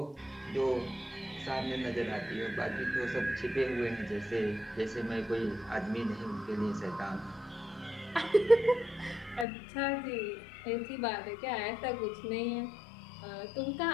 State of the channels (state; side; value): drops out; right; at 9.5 s